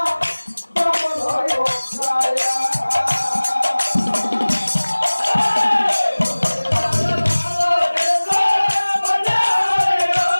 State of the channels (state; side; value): inverted; both; correlation -1.00